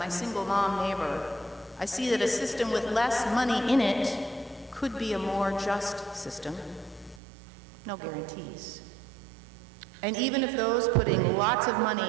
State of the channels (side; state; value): left; drops out; at 7.2 s